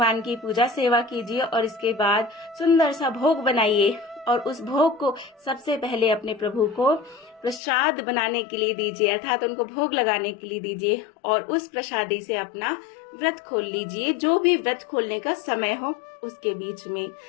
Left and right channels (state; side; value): drops out; right; at 7.6 s